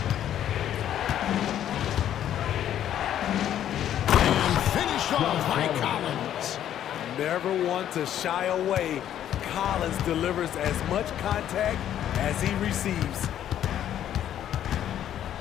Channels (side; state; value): right; quieter; 10.9 dB